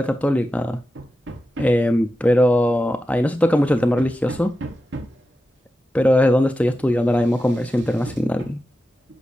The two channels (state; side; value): normal; both; correlation 0.91